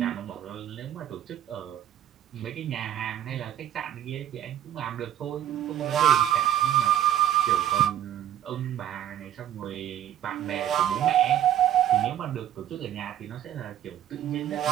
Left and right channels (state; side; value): quieter; left; 11.4 dB